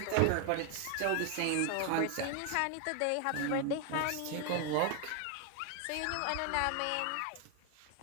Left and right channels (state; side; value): different; both; correlation 0.00